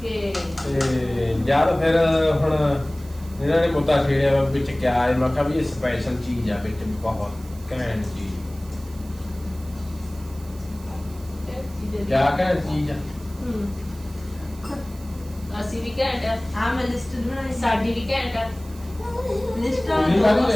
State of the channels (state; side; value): noise; right; hiss, 22 dB below the sound